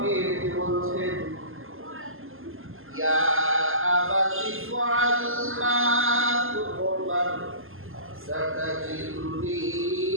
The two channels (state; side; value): late; left; 0.60 ms